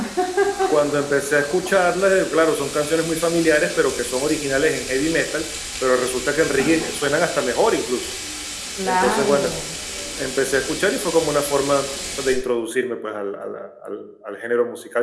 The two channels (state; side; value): identical; both; correlation 1.00